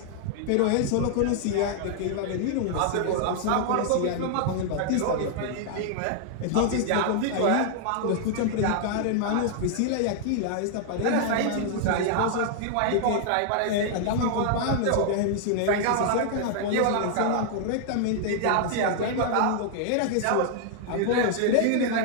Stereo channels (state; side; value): different; both; correlation 0.00